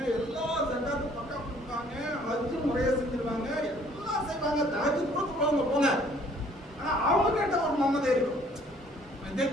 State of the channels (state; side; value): normal; both; correlation 0.58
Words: எல்லா ஜக்காத்தும் பக்கா கொடுப்பாங்க, ஹஜ்ஜு முறையா செஞ்சிருவாங்க, எல்லாம் செய்வாங்க, தஹஜ்ஜுத் கூட தொழுவாங்க போங்க. ஆனா அவங்க கிட்ட ஒரு மமதை இருக்கும்.